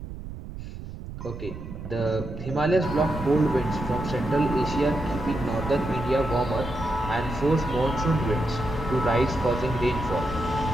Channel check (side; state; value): right; noise; rumble, 11 dB below the sound